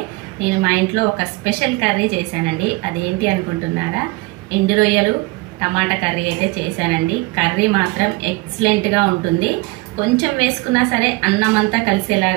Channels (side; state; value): left; quieter; 23.5 dB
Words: నేను మా ఇంట్లో ఒక స్పెషల్ కర్రీ చేశానండి. అదేంటి అనుకుంటున్నారా? ఎండు రొయ్యలు టమాటా కర్రీ అయితే చేశానండి. కర్రీ మాత్రం ఎక్సలెంట్గా ఉంటుంది. కొంచెం వేసుకున్నా సరే అన్నం అంతా